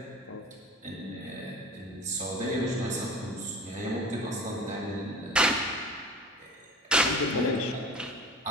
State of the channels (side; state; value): both; normal; correlation 0.39